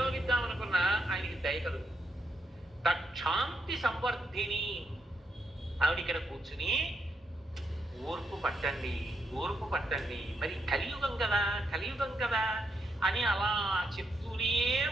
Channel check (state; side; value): normal; both; correlation 0.79